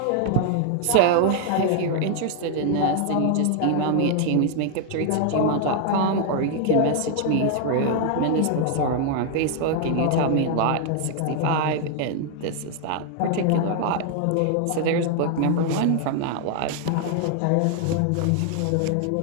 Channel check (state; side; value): different; both; correlation 0.00